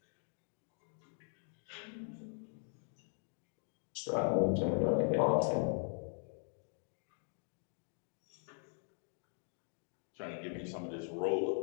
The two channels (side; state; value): right; silent; 51 dB below the other